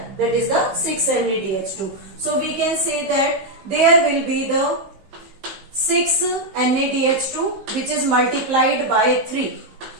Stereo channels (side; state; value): left; late; 15 ms